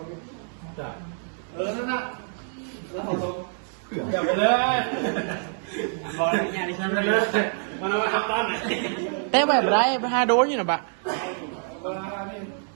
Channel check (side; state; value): left; silent; 58 dB below the other